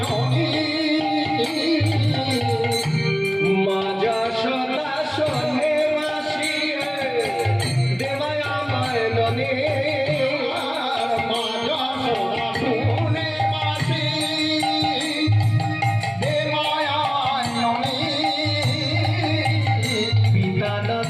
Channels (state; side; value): identical; both; correlation 1.00